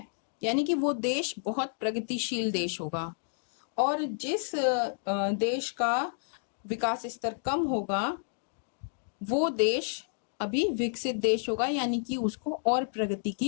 यानी कि वो देश बहुत प्रगतिशील देश होगा। और जिस देश का विकास स्तर कम होगा वो देश अभी विकसित देश होगा, यानी कि उसको और प्रगति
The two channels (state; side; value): silent; right; digital silence